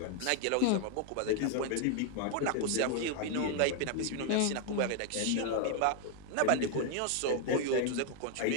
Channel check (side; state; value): both; different; correlation 0.00